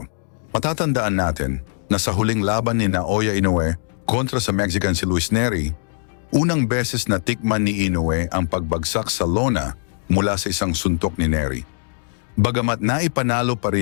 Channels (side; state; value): right; silent; digital silence